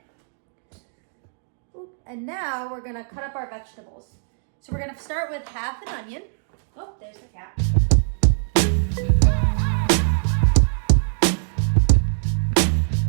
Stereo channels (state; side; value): silent; left; 64 dB below the other